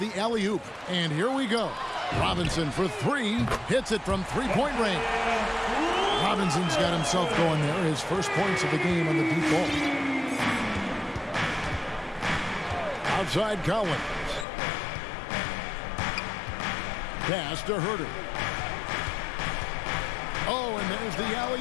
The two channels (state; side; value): drops out; right; at 14.5 s